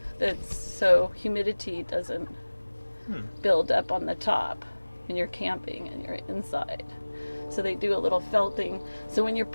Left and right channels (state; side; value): inverted; both; correlation -1.00